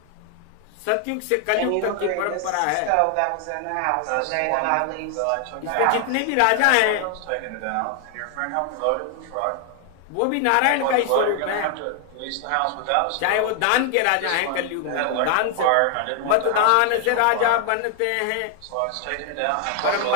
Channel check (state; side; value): different; both; correlation 0.00